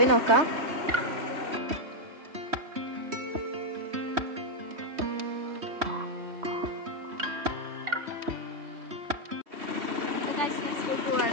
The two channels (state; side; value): late; left; 3.1 ms